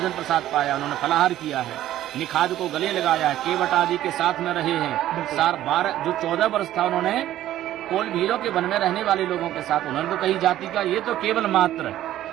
प्रसाद पाया, उन्होंने फलाहार किया है। निखाद को गले लगाया है, केवट आदि के साथ में रहे हैं। 14 वर्ष था उन्होंने कोल भीलों के वन में रहने वाले लोगों के साथ। उन्होंने तो कही जाति का, ये तो केवल मात्र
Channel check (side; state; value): left; quieter; 13.2 dB